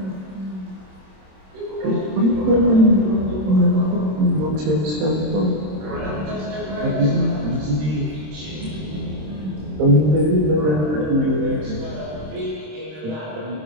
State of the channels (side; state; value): left; late; 26 ms